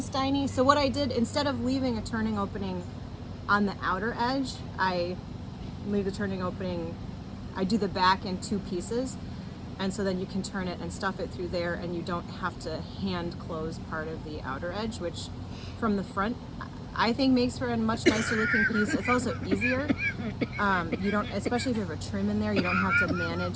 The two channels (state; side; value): identical; both; correlation 1.00